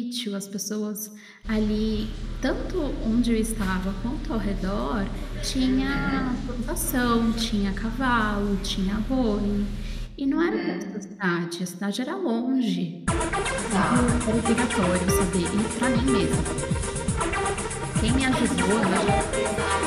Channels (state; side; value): identical; both; correlation 1.00